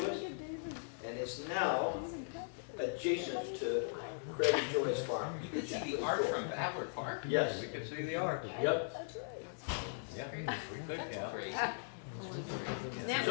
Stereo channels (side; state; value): right; silent; 52 dB below the other